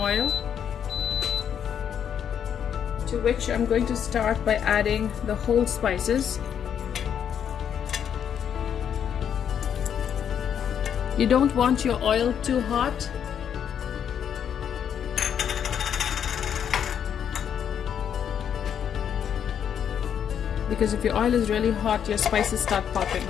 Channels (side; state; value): right; quieter; 8.6 dB